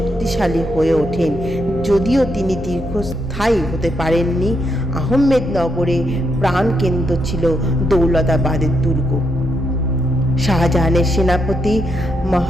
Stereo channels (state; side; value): normal; both; correlation 0.79